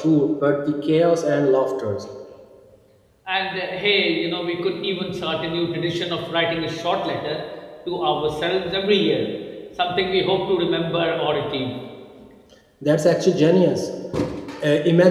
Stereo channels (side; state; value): both; identical; correlation 1.00